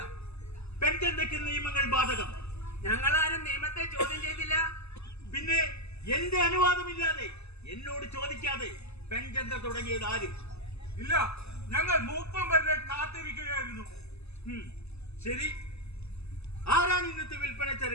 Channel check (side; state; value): right; late; 0.79 ms